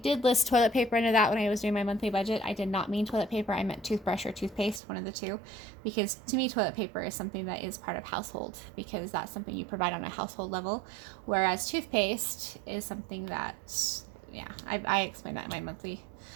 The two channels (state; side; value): drops out; left; at 4.8 s